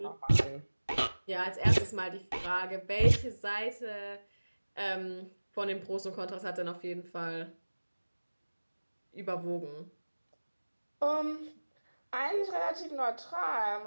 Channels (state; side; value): inverted; both; correlation -1.00